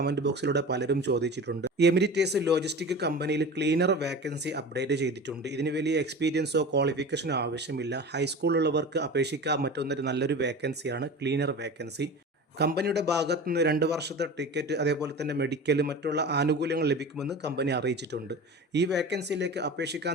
ബോക്സിലൂടെ പലരും ചോദിച്ചിട്ടുണ്ട്. എമിറേറ്റ്സ് ലോജിസ്റ്റിക് കമ്പനിയിൽ ക്ലീനർ വേക്കൻസി അപ്ഡേറ്റ് ചെയ്തിട്ടുണ്ട്. ഇതിന് വലിയ എക്സ്പീരിയൻസോ ക്വാളിഫിക്കേഷനോ ആവശ്യമില്ല. ഹൈസ്കൂളുള്ളവർക്ക് അപേക്ഷിക്കാൻ പറ്റുന്ന നല്ലൊരു വേക്കൻസിയാണ് ക്ലീനർ വേക്കൻസി. കമ്പനിയുടെ ഭാഗത്തു നിന്ന് 2 വർഷത്തെ ടിക്കറ്റ്, അതേപോലെ തന്നെ മെഡിക്കൽ, മറ്റുള്ള ആനുകൂല്യങ്ങൾ ലഭിക്കുമെന്ന് കമ്പനി അറിയിച്ചിട്ടുണ്ട്. ഈ വേക്കൻസിയിലേക്ക്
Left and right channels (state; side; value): normal; both; correlation 0.33